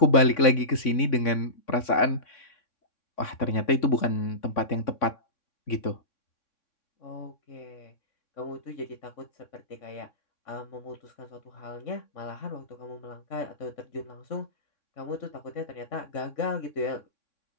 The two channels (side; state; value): right; late; 3.6 ms